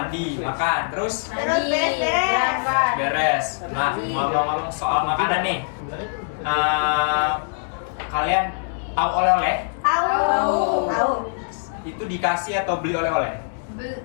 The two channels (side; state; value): right; silent; digital silence